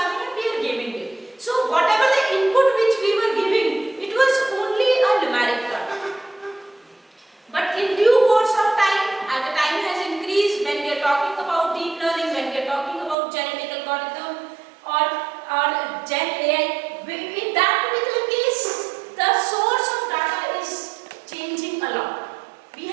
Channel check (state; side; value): drops out; left; at 13.2 s